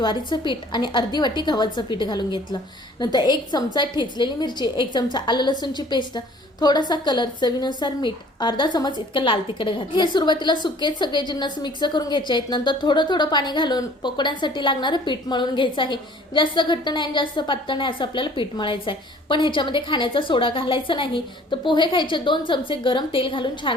पीठ आणि अर्धी वाटी गव्हाचं पीठ घालून घेतलं. नंतर 1 चमचा ठेचलेली मिरची, 1 चमचा आलं लसूणची पेस्ट, थोडासा कलर, चवीनुसार मीठ, अर्धा चमच इतकं लाल तिखट घातलं. हे सुरुवातीला सुकेच सगळे जिन्नस मिक्स करून घ्यायचे आहेत. नंतर थोडं थोडं पाणी घालून पकोड्यांसाठी लागणारं पीठ मळून घ्यायचं आहे. जास्त घट्ट नाही आणि जास्त पातळ नाही असं आपल्याला पीठ मळायचं आहे. पण ह्याच्यामध्ये खाण्याचा सोडा घालायचा नाही. तर पोहे खायचे 2 चमचे गरम तेल घालून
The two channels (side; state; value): both; normal; correlation 0.52